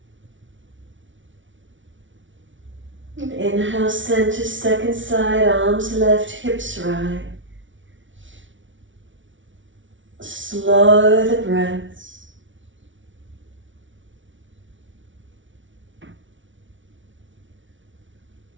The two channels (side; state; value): left; late; 0.56 ms